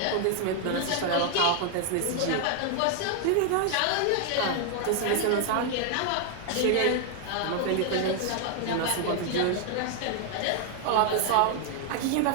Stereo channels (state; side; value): different; both; correlation 0.00